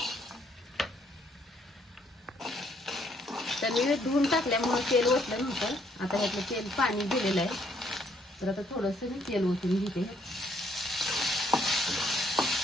तर मी धुवून टाकल्यामुळे तेल ओतलं नव्हतं। आता ह्यातलं तेल पाणी दिलेलं आहे। तर आता थोडंसं मी तेल ओतून घेते।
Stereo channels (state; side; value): normal; both; correlation 0.68